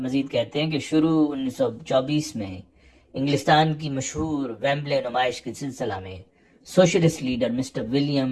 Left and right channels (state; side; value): identical; both; correlation 1.00